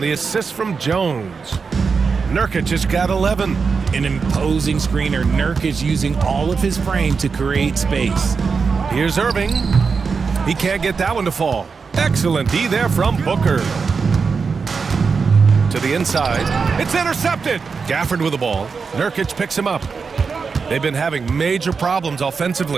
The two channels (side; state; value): left; quieter; 5.2 dB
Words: assist from Jones. Nurkic has got 11. An imposing screener. Nurkic using all of his frame to create space. Here's Irving. He can't get that one to fall. Excellent D there from Booker. To the inside. It's intercepted. Gafford with the ball. Nurkic picks him up. They've been having major problems